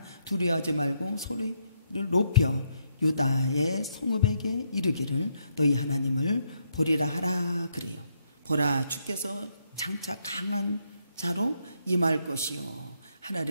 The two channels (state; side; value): inverted; both; correlation -0.76